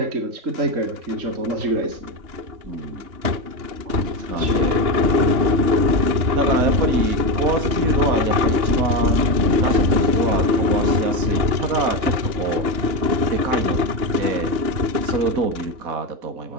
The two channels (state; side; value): late; left; 2.9 ms